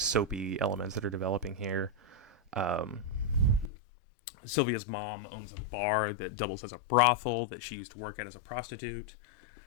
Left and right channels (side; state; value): right; drops out; at 3.7 s